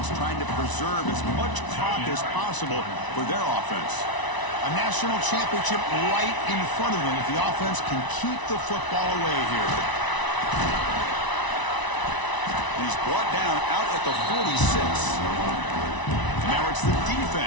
trying to preserve as much clock as possible for their offense. A national championship right in front of them if the offense can keep the football away here. He's brought down out at the 46. Now it's the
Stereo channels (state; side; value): late; right; 1.0 ms